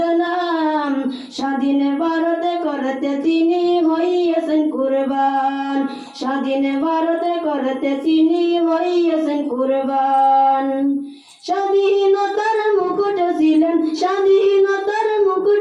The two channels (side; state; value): both; identical; correlation 1.00